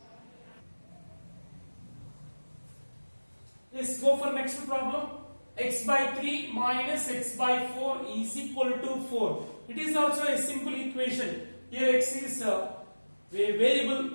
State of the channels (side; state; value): both; inverted; correlation -1.00